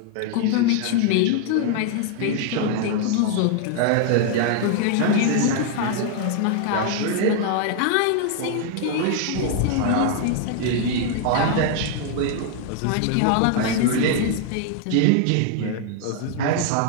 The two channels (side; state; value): both; different; correlation 0.00